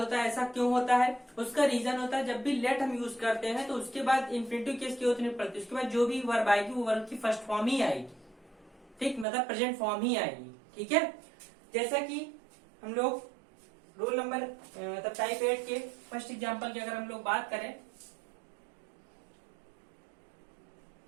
है। ऐसा क्यों होता है? उसका रीजन होता है जब भी लेट हम यूज करते हैं तो उसके बाद इन्फिनेटिव केस की होती नहीं पड़ती, उसके बाद जो भी वर्ब आएगी वो वर्ब की फर्स्ट फॉर्म ही आएगी, ठीक, मतलब प्रेजेंट फॉर्म ही आएगी, ठीक है। जैसा कि हम लोग रूल नंबर मतलब टाइप 8 के फर्स्ट एग्जाम्पल की अगर हम लोग बात करें,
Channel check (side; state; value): left; drops out; at 9.2 s